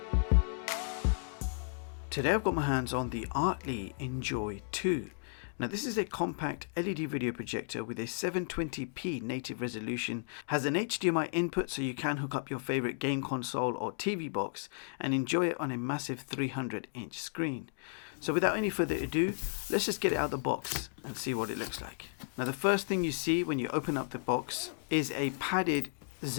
Today I've got my hands on the ARTLII Enjoy 2. Now this is a compact LED video projector with a 720p native resolution, has an HDMI input so you can hook up your favorite game console or TV box and enjoy it on a massive 300-inch screen. So without any further ado, let's just get it out of the box and see what it looks like. Now the first thing you see when you open up the box is a padded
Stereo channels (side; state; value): right; silent; digital silence